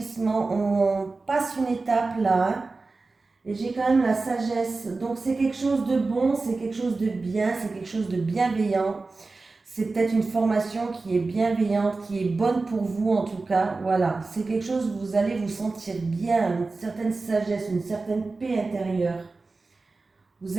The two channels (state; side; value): quieter; left; 3.7 dB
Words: On passe une étape là. Hein. Et j'ai quand même la sagesse. Donc c'est quelque chose de bon, c'est quelque chose de bien, c'est quelque chose de bienveillant. C'est peut-être une formation qui est bienveillante, qui est bonne pour vous en tout cas. Voilà, c'est quelque chose où vous allez vous sentir bien, une certaine sagesse, une certaine paix intérieure. Vous